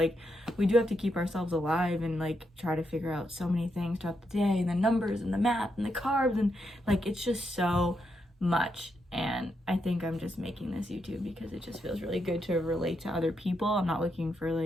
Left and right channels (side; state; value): both; normal; correlation 0.81